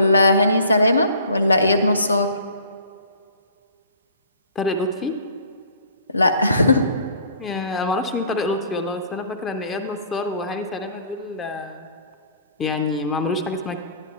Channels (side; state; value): both; inverted; correlation -0.52